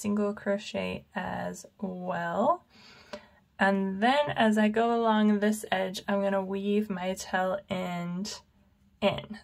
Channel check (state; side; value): identical; both; correlation 1.00